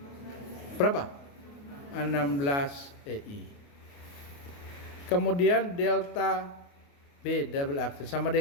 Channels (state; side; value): late; right; 28 ms